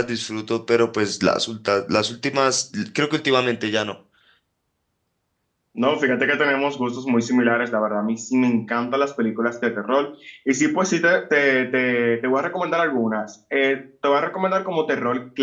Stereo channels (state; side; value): identical; both; correlation 1.00